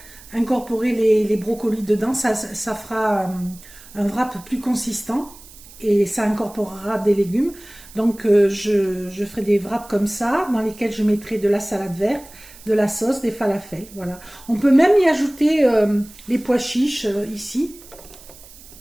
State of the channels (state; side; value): noise; right; hiss, 21 dB below the sound